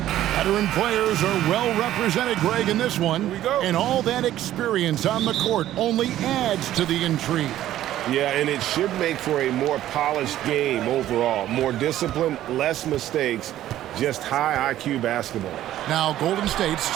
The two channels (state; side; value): quieter; left; 13.1 dB